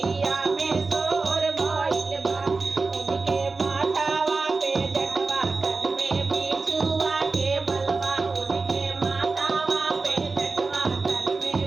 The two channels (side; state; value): left; quieter; 4.0 dB